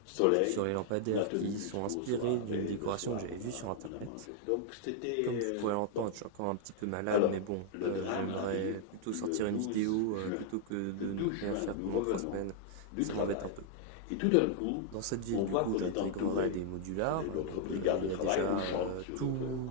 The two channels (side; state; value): both; different; correlation -0.01